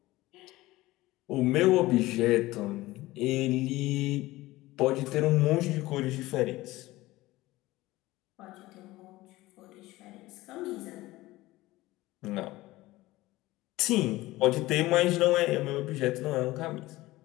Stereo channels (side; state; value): right; quieter; 18.4 dB